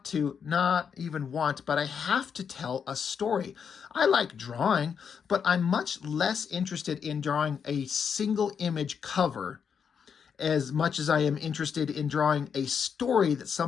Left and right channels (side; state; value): right; quieter; 6.9 dB